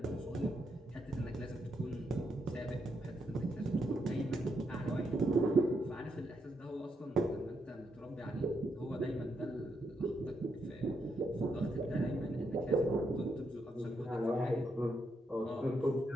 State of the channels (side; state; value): both; normal; correlation 0.79